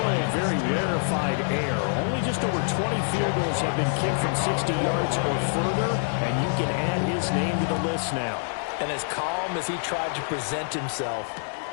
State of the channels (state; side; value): silent; right; digital silence